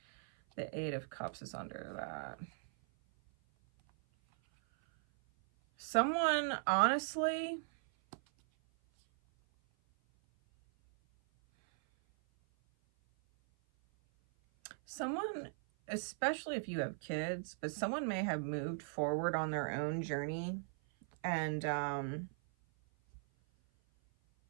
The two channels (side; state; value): left; silent; 52 dB below the other